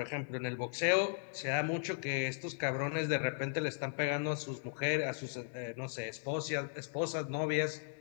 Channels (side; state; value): right; silent; digital silence